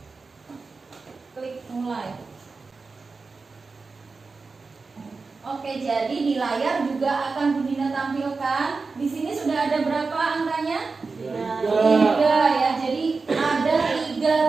klik mulai. Oke, jadi di layar juga akan Bu Dinda tampilkan. Di sini sudah ada berapa angkanya? 3 ya. Jadi ada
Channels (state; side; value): quieter; left; 4.3 dB